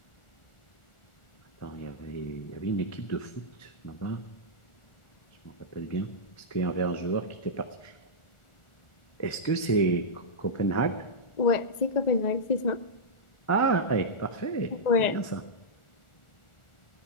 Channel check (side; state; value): right; late; 1.4 ms